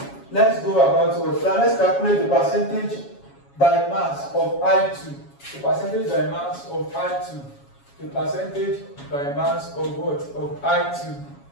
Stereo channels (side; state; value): right; late; 7.2 ms